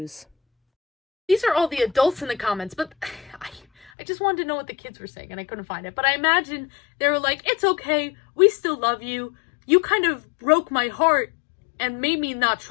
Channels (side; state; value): right; drops out; at 3.9 s